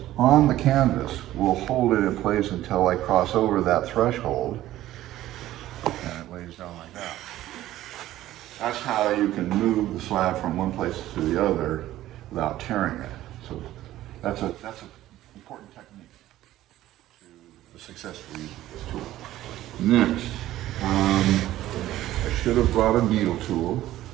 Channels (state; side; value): quieter; left; 14.4 dB